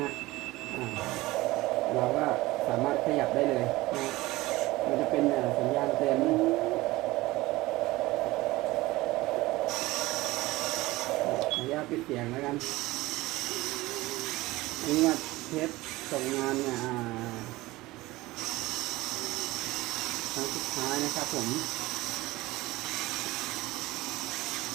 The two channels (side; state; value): left; quieter; 19.4 dB